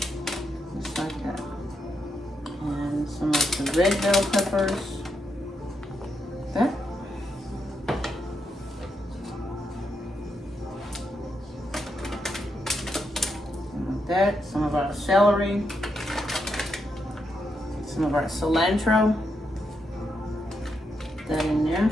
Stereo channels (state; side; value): normal; both; correlation 0.83